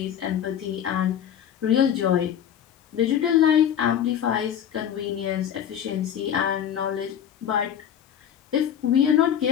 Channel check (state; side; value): quieter; right; 9.4 dB